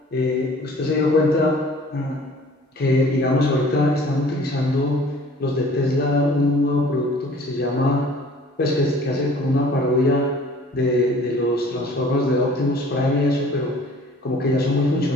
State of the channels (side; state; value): both; normal; correlation 0.50